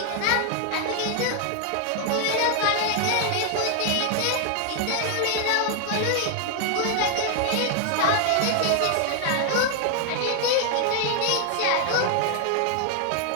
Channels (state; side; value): different; both; correlation 0.00